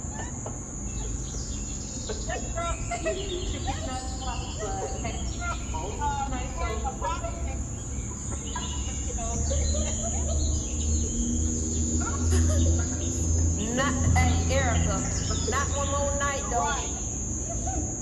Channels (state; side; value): identical; both; correlation 1.00